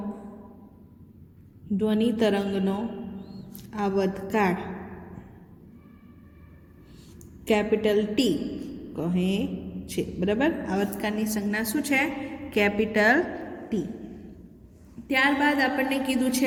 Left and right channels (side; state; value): both; identical; correlation 1.00